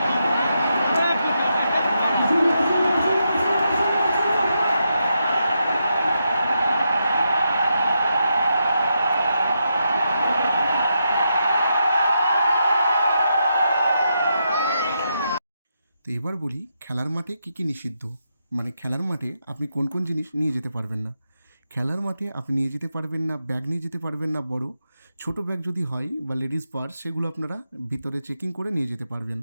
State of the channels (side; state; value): both; inverted; correlation -0.84